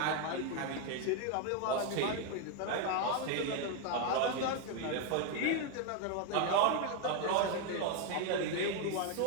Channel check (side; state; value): both; different; correlation 0.01